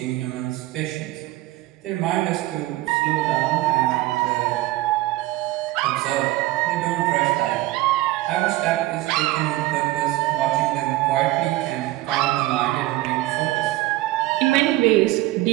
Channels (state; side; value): quieter; left; 17.5 dB